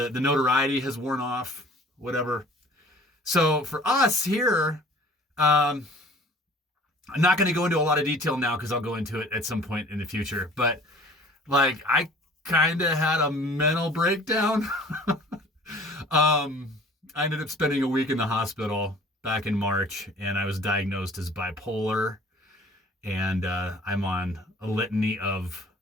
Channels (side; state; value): both; normal; correlation 0.49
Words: notoriety has worn off, whatever. So for us here, I'm not going to go into a lot of detail now because I'll go into it at some point in the future. But like, I kind of had a mental breakdown. I ended up spending a week in the hospital back in March, and I was diagnosed as bipolar, and I'm on a litany of